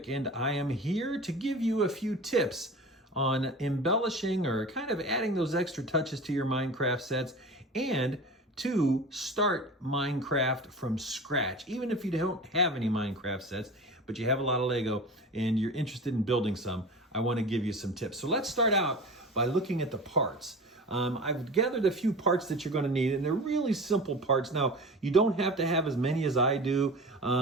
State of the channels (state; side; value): normal; both; correlation 0.35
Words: and I am here to give you a few tips on embellishing or kind of adding those extra touches to your Minecraft sets and to start Minecraft from scratch. Even if you don't have any Minecraft sets, but you have a lot of Lego and you're interested in building some, I want to give you some tips. So let's start out by looking at the parts. I've gathered a few parts that you're going to need, and they're really simple parts. Now, you don't have to have as many as I do.